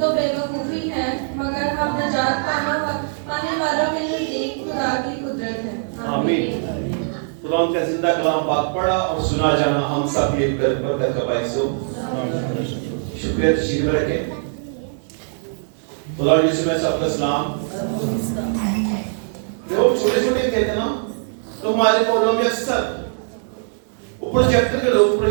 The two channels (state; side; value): silent; left; 65 dB below the other